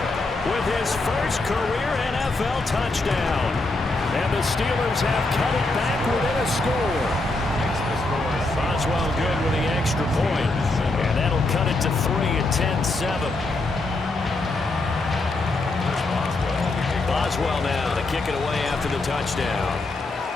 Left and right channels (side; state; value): right; quieter; 3.1 dB